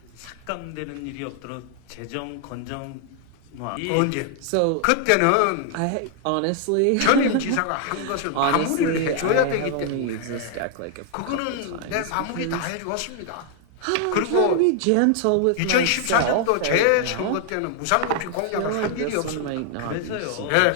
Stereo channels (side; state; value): both; different; correlation 0.00